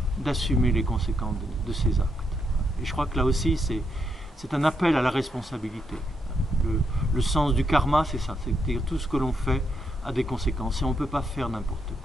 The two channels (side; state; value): both; normal; correlation 0.79